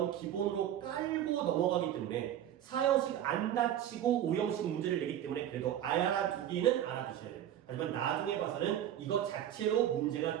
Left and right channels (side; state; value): left; quieter; 11.0 dB